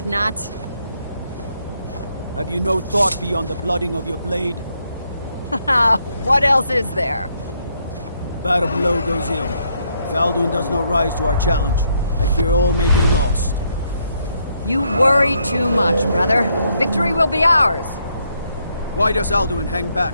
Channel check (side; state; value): both; inverted; correlation -0.74